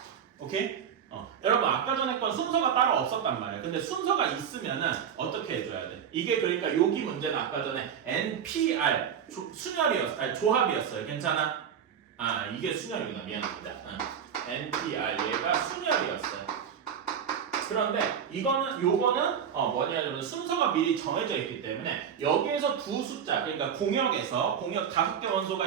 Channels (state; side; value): quieter; left; 8.0 dB